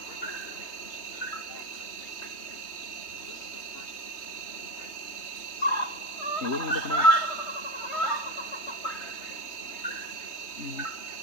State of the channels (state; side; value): late; right; 3.3 ms